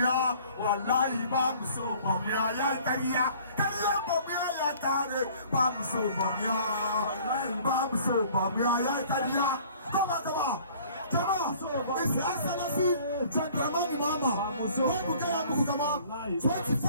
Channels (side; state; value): both; inverted; correlation -0.53